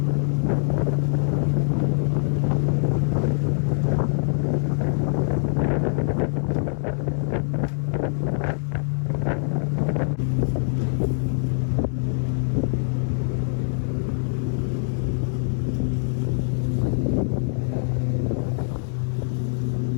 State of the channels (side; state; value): right; silent; 63 dB below the other